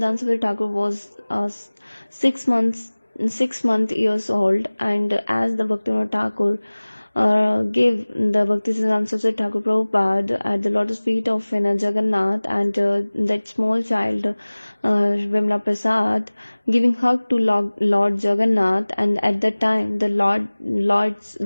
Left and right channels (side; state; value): both; inverted; correlation -1.00